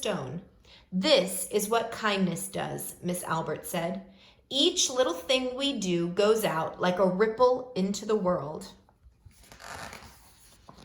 "This is what kindness does," Miss Albert said. "Each little thing we do goes out like a ripple into the world."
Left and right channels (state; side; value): identical; both; correlation 1.00